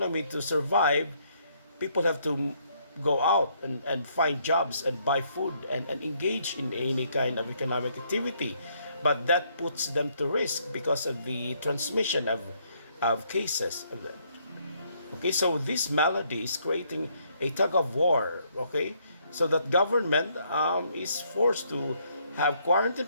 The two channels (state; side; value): inverted; both; correlation -0.69